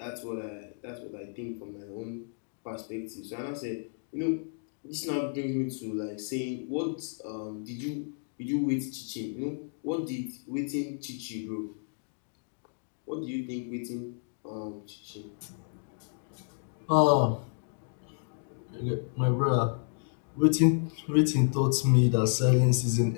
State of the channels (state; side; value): silent; right; digital silence